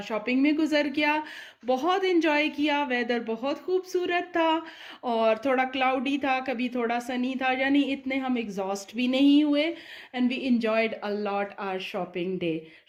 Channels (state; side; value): identical; both; correlation 1.00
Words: शॉपिंग में गुजर गया। बहुत इन्जॉय किया। वेदर बहुत खूबसूरत था और थोड़ा क्लाउडी था, कभी थोड़ा सनी था, यानी इतने हम एग्जॉस्ट भी नहीं हुए। And we enjoyed a lot our shopping day.